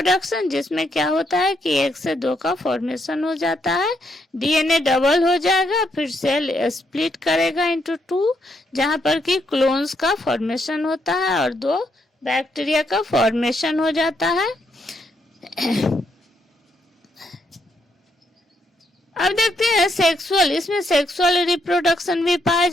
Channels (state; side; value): normal; both; correlation 0.76